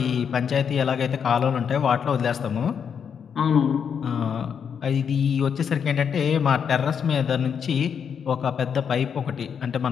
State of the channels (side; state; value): right; quieter; 7.3 dB